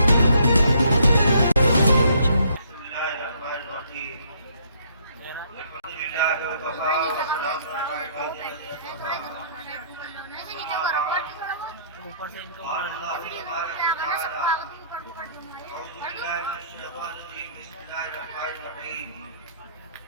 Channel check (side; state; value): both; inverted; correlation -0.64